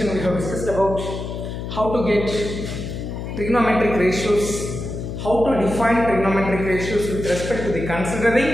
we have discussed about how to get trigonometric ratios, how to define trigonometric ratios with respect to the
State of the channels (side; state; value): left; noise; hum, 6 dB below the sound